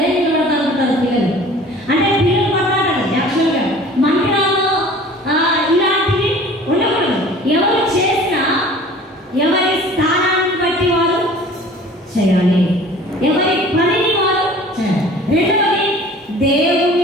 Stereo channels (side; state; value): both; normal; correlation 0.46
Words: నేను పడతాను అంటారు పిల్లలు. అంటే పిల్లలు కొట్లాడాలి. యాక్చువల్గా మందిరాల్లో ఇలాంటివి ఉండకూడదు. ఎవరు చేసినా ఎవరి స్థానాన్ని బట్టి వారు చేయాలి, ఎవరి పనిని వారు చేయాలి. రెండవది,